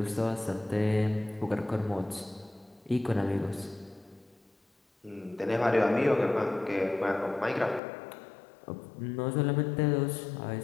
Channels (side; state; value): right; drops out; at 7.8 s